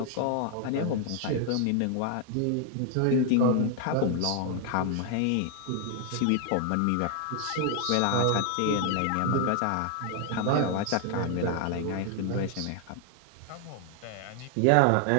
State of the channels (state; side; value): different; both; correlation 0.00